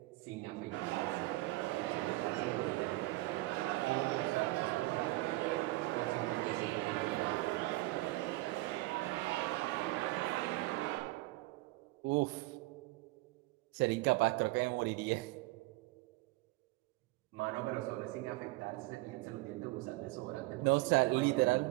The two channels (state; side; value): quieter; left; 20.8 dB